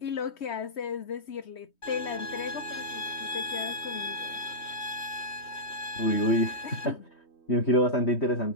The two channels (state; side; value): late; right; 3.2 ms